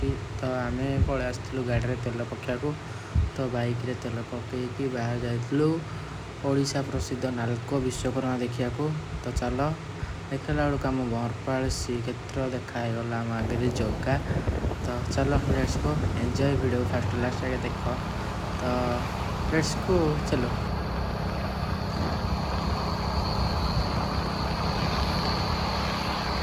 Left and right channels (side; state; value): both; identical; correlation 1.00